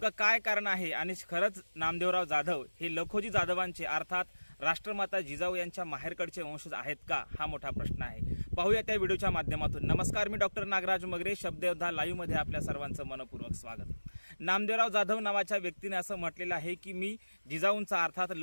काय कारण आहे आणि खरंच नामदेवराव जाधव हे लखोजी जाधवांचे अर्थात राष्ट्रमाता जिजाऊ यांच्या माहेरकडचे वंशज आहेत का, हा मोठा प्रश्न आहे। पाहूया त्या व्हिडिओच्या माध्यमातून। नमस्कार, मी डॉक्टर नागराज मगरे, शब्दयोद्धा लाईव्ह मध्ये आपल्या सर्वांचं मनपूर्वक स्वागत। नामदेवराव जाधव नावाच्या व्यक्तीने असं म्हटलेलं आहे की मी जिजाऊंचा अर्थात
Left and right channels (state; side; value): inverted; both; correlation -1.00